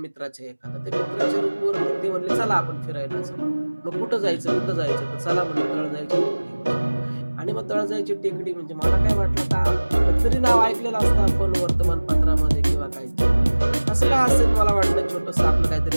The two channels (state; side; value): inverted; both; correlation -1.00